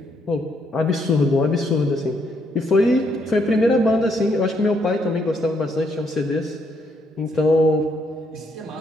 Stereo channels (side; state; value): both; normal; correlation 0.73